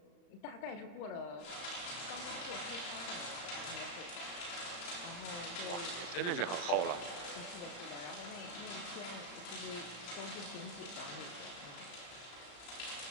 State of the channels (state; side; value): late; right; 34 ms